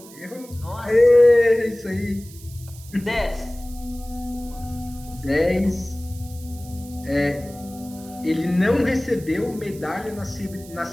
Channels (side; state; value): right; noise; hiss, 20 dB below the sound